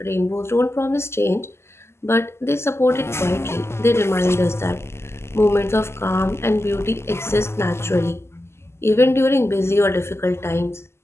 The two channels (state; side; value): late; right; 0.12 ms